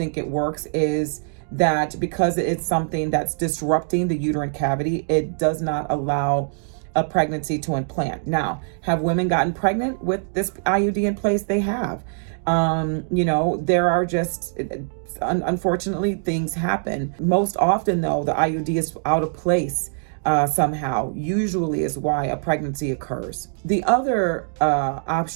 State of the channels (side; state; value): left; silent; digital silence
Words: it works is that because it's something that's disrupting the uterine cavity, it does not allow a pregnancy to implant. Now, have women gotten pregnant with this IUD in place? They have. There are just, unfortunately, things happen. Most often, though, the IUD is out of place somehow, usually is why a pregnancy occurs. The other